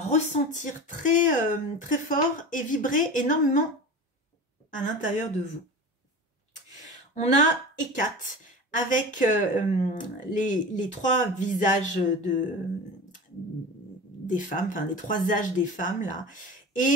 très, très fort et vibrer énormément à l'intérieur de vous. On a Hécate avec les trois visages des femmes, enfin les trois âges des femmes là.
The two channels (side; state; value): both; normal; correlation 0.32